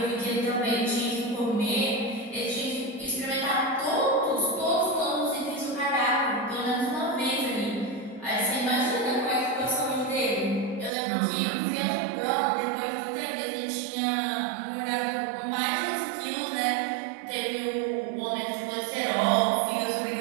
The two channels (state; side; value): drops out; left; at 10.9 s